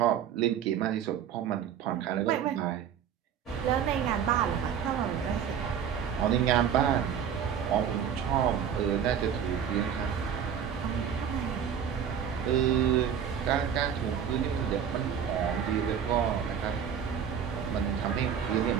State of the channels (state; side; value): quieter; left; 8.3 dB